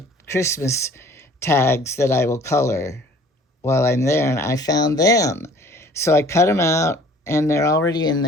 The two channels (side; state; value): both; normal; correlation 0.51